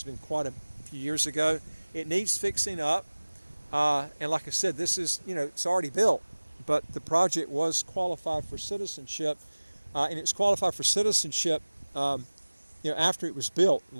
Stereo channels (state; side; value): inverted; both; correlation -1.00